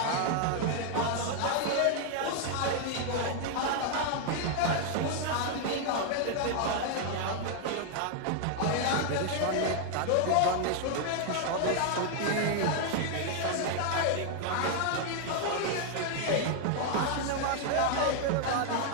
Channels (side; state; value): both; different; correlation 0.00